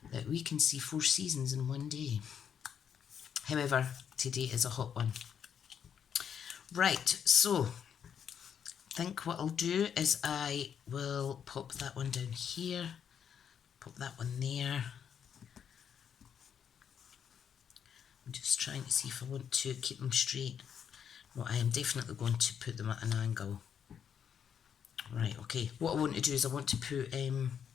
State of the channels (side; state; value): right; quieter; 8.1 dB